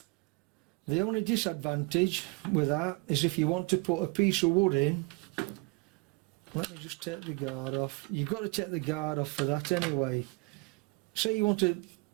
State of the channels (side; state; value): left; quieter; 26.9 dB